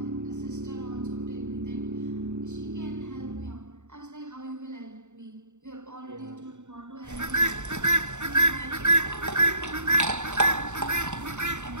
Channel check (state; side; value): late; left; 0.84 ms